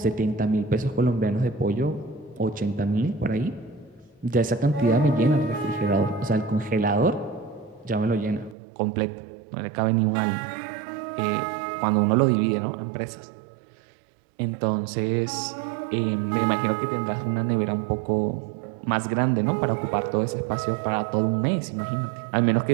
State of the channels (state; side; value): drops out; left; at 8.6 s